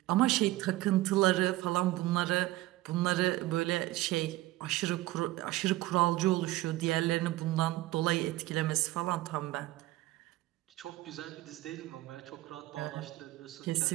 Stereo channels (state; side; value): quieter; left; 17.4 dB